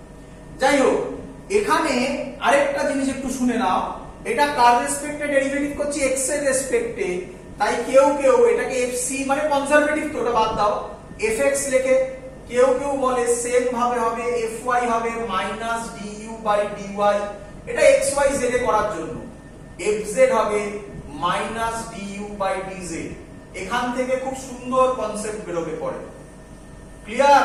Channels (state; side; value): identical; both; correlation 1.00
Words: যাই হোক, এখানে আরেকটা জিনিস একটু শুনে নাও। এটা কার রেসপেক্টে ডেরিভেটিভ করছি, x এর রেসপেক্টে। তাই কেউ কেউ এটাকে fc মানে কনজারভেটিভ, তো ওটা বাদ দাও, fx লেখে। কেউ কেউ বলে সেম ভাবে হবে fy হবে মাইনাস du বাই dy, এটা xy z এ করার জন্য। fz হবে মাইনাস du বাই dz। এখান থেকে খুব সুন্দর কনসেপ্ট বেরোবে পরে। ক্লিয়ার?